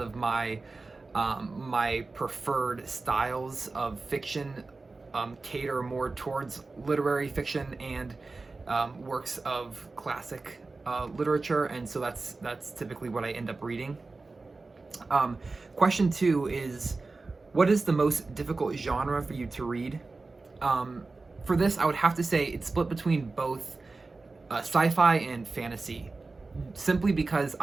of my my preferred styles of fiction cater more towards literary fiction and works of classic literature, and so that's typically what I end up reading. Question 2 is, what is the most difficult genre for you to read? For this, I would have to say it's split between both sci-fi and fantasy, simply because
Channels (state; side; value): quieter; left; 3.7 dB